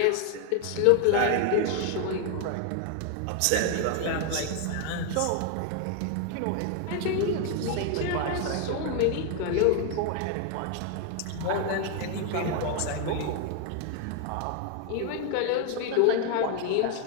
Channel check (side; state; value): both; different; correlation 0.00